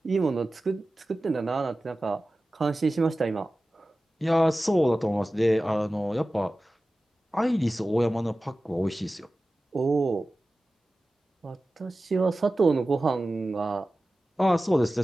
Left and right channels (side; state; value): both; normal; correlation 0.95